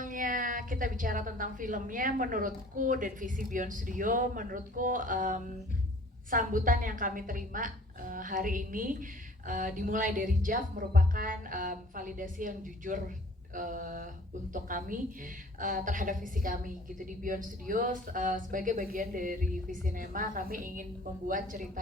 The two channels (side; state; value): both; normal; correlation 0.51